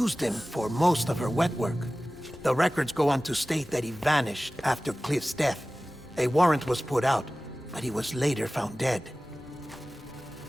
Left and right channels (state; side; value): normal; both; correlation 0.97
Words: him for most of her wet work. The records go on to state that he vanished after Cliff's death. A warrant was put out, but he was later found dead.